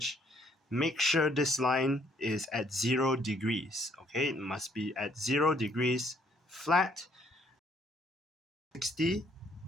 Make sure this line is at 0 degrees. Okay, it must be at 0 degrees flat. 60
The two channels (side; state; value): both; normal; correlation 0.67